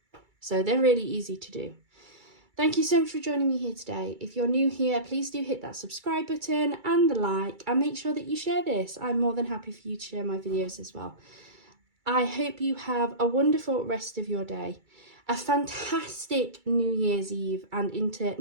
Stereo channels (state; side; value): late; left; 2.3 ms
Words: So they're really easy to do. Thank you so much for joining me here today. If you're new here, please do hit that subscribe button and the like, and make sure that you share this. I'm more than happy for you to share my videos as well. I hope you have a wonderful rest of your day. A fantastic New Year's Eve and into